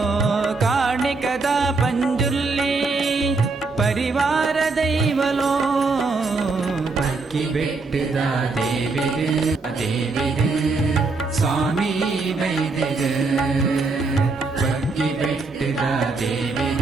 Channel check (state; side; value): quieter; left; 3.9 dB